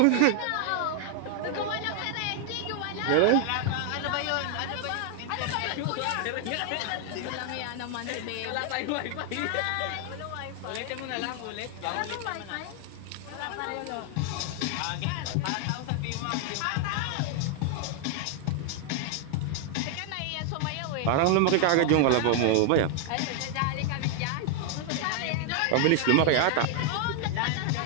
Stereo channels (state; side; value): different; both; correlation 0.00